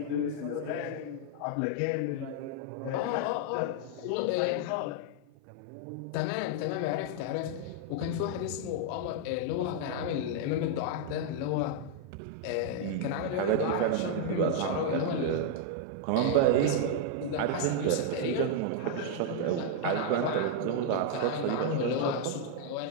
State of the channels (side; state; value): both; different; correlation 0.00